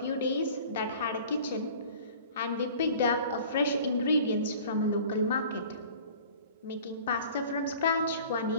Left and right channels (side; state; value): both; inverted; correlation -0.46